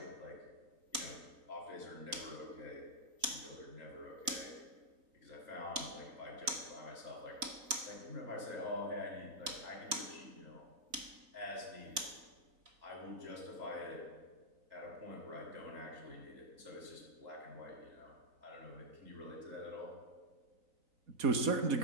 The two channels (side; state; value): left; late; 4.0 ms